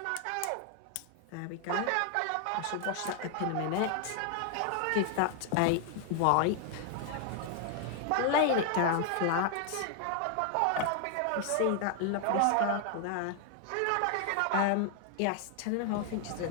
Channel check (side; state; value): both; different; correlation 0.00